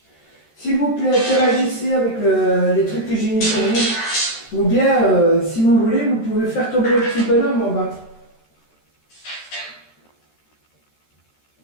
S'il vous plaît, interagissez avec les trucs que j'ai mis pour vous. Ou bien, si vous voulez, vous pouvez faire tomber le petit bonhomme en bas.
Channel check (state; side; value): late; right; 13 ms